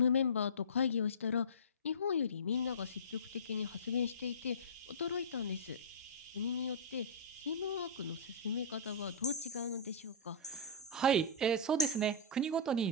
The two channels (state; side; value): normal; both; correlation -0.19